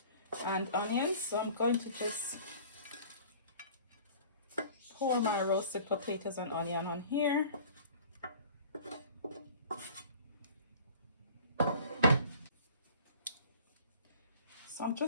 and onions. So I'm going to just pour my roasted potatoes and onion on here. So I'm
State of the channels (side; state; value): both; inverted; correlation -0.47